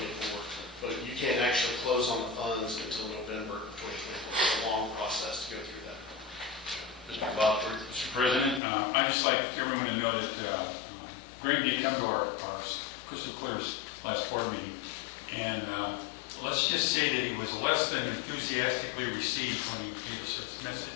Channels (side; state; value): right; drops out; at 8.6 s